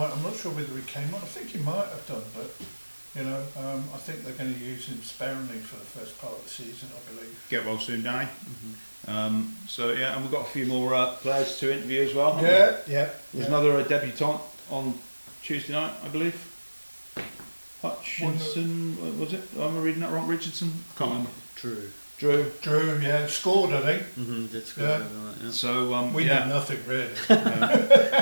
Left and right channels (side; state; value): both; inverted; correlation -1.00